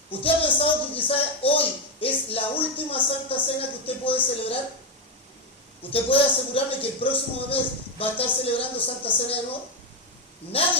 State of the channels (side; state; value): both; normal; correlation 0.08